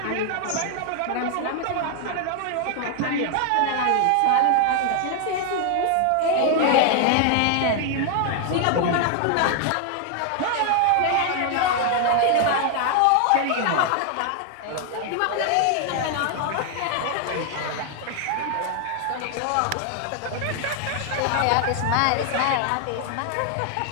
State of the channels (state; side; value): different; both; correlation 0.00